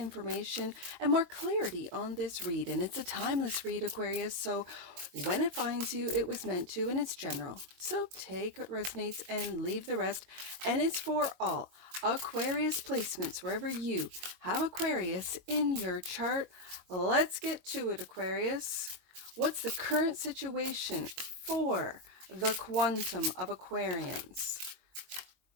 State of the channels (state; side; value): late; left; 22 ms